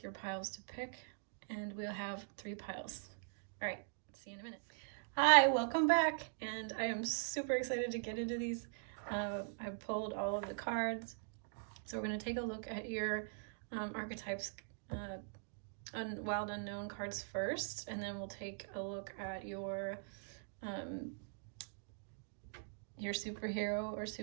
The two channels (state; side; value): silent; left; digital silence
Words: your piles to pick, and we'll have 3 piles. All right, see you in a minute. Hi, welcome back, and I am super excited to get into these. I've pulled all of the cards, so we're going to take a look at your archetypes, Wild Unknown cards first, and then we'll take a look at your superhero or